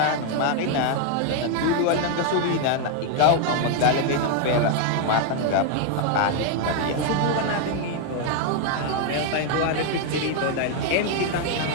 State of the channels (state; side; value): different; both; correlation 0.01